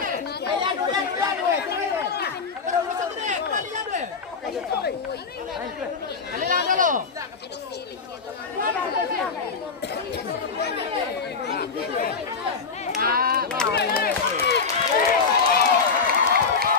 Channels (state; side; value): quieter; right; 5.1 dB